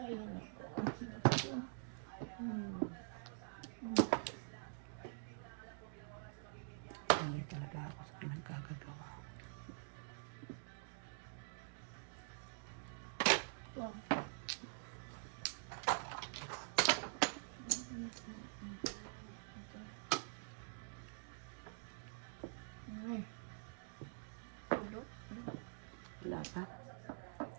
Hindi talaga ako sa pinagkagagawa. Wala pa.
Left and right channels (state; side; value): silent; left; digital silence